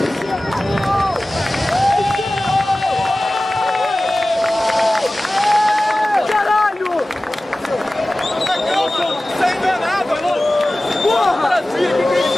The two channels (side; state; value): both; normal; correlation 0.97